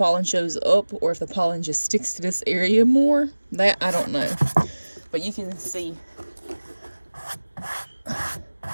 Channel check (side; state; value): both; inverted; correlation -1.00